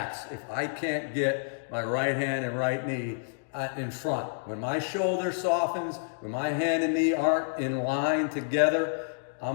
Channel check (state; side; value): silent; right; digital silence